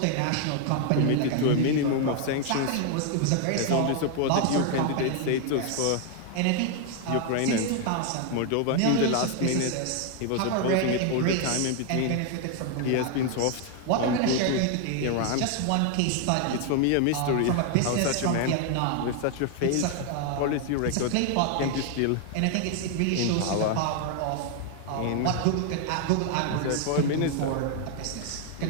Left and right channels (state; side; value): different; both; correlation 0.00